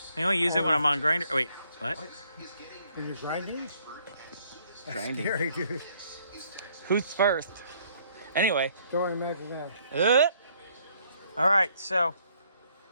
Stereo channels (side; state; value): both; inverted; correlation -0.66